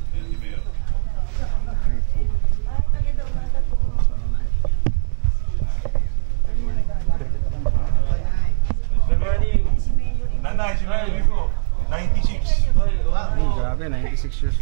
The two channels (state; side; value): silent; left; digital silence